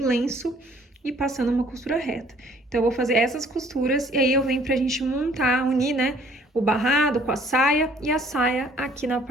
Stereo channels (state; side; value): normal; both; correlation 0.58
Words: e passando uma costura reta. Então, eu vou fazer essas costuras e aí eu venho pra gente montar, unir, né, o barrado com a saia e a saia aqui na